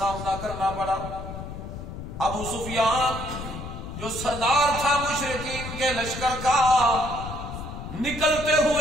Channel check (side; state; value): left; noise; rumble, 9 dB below the sound